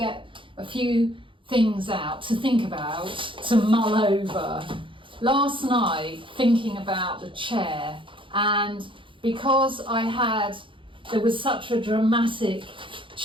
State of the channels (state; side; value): late; left; 0.25 ms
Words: a few things out to think about, to mull over. Last night, thinking about the chair, and because there was such a dramatic